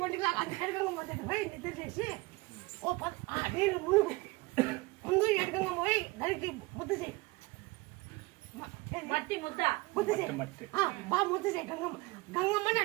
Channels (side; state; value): left; quieter; 23.0 dB